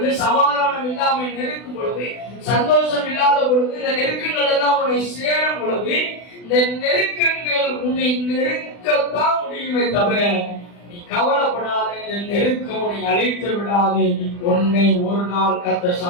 சமாதானம் இல்லாமை நெருக்கும் பொழுது, சந்தோஷம் இல்லாத பொழுது, இந்த நெருக்கங்கள் எல்லாம் உன்னை சேரும் பொழுது, இந்த நெருக்கங்கள் உன்னை நெருக்கத்தான் முடியுமே தவிர நீ கவலைப்படாத, நெருக்கம் உன்னை அழைத்து விடாது, உன்னை ஒரு நாள் கர்த்தர்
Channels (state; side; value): late; right; 40 ms